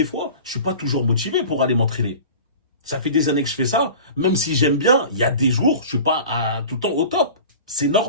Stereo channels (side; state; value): both; inverted; correlation -0.39